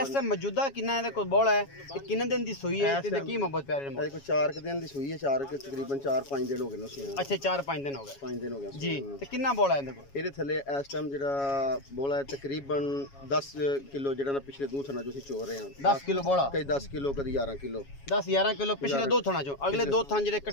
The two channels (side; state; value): right; late; 7.2 ms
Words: ਮੌਜੂਦਾ ਕਿੰਨਾ ਇਹਦੇ ਕੋਲ ਬੋਲ ਹੈ, ਇਹ ਕਿੰਨੇ ਦਿਨ ਦੀ ਸੂਈ ਹੈ ਤੇ ਕੀ ਮੁਹੱਬਤ ਪਿਆਰੇ ਨੇ? ਕੋਈ 4 ਦਿਨ ਦੀ ਸੂਈ ਹੈ, 4 ਤਕਰੀਬਨ 4-5 ਦਿਨ ਹੋ ਗਏ ਨੇ ਸੂਈ। ਅੱਛਾ 4-5 ਦਿਨ ਹੋ ਗਏ। 5 ਦਿਨ ਹੋ ਗਏ ਜੀ। ਤੇ ਕਿੰਨਾ ਬੋਲ ਹੈ ਇਹਦੇ ਕੋਲ? ਇਹਦੇ ਥੱਲੇ ਇਸ ਟਾਈਮ ਜਿਹੜਾ ਬੋਲਾ ਹੈ ਤਕਰੀਬਨ 10 ਕਿਲੋ, ਜਿਹੜਾ ਨਾ ਪਿਛਲੇ 2 ਥਣਾ ਜੋ ਅਸੀਂ ਚੋ ਰਹੇ ਹਾਂ। 10 ਕਿਲੋ ਬੋਲਾ, ਕਈ 10 ਕਿਲੋ, ਕਦੀ 11 ਕਿਲੋ। 10-11 ਕਿਲੋ ਪਿਛਲੇ 2 ਥਣਾ ਚੋਂ, ਅਗਲੇ 2 ਥਣ ਜਿਹੜੇ